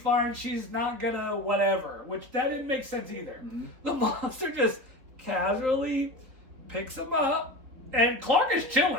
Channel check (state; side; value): late; left; 4.0 ms